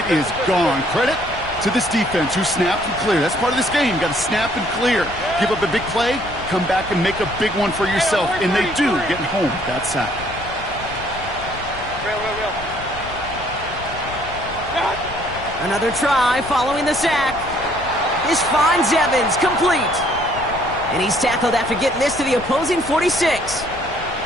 is gone. Credit to this defense who snapped and cleared. That's part of this game. You got to snap and clear. Give up a big play, come back and make a big one for yourself. And they do, getting home with that sack. Another try following the sack. This finds Evans, complete. And he's tackled after getting this to the opposing 46.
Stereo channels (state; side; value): noise; left; rumble, 14 dB below the sound